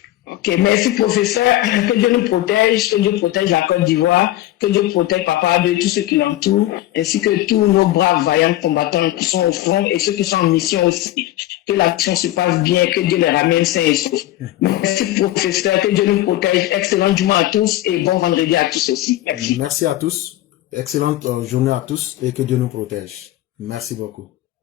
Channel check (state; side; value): quieter; right; 15.0 dB